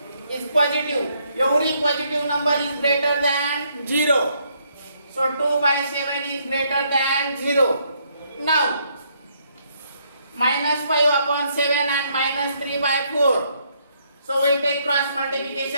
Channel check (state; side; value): inverted; both; correlation -0.72